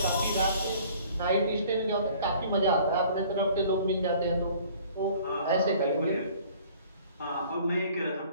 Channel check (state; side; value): inverted; both; correlation -0.52